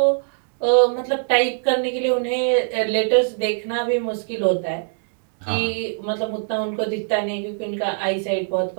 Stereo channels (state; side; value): silent; left; digital silence